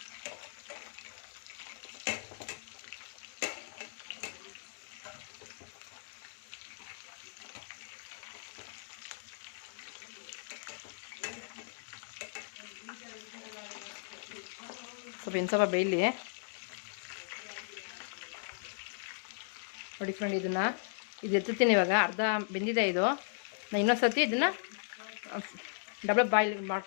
ಸ್ವಲ್ಪ ಬೇಯಲಿ ನೋಡಿ ಫ್ರೆಂಡ್. ಇದು ಎತ್ತುತ್ತೀನಿ ಇವಾಗ. ಅರ್ಧ ಬೆಂದಿದೆ ಇದು. ನಾನು ಇನ್ನೊಂದು ಸರ್ತಿ ಇದನ್ನು ಡಬಲ್ ಬಾಯ್ಲ್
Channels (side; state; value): right; silent; digital silence